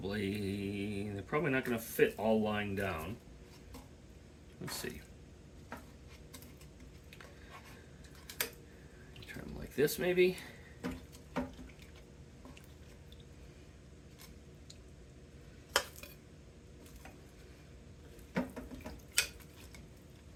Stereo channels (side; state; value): both; identical; correlation 1.00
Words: probably not going to fit all lying down. Let's see. Try them like this maybe.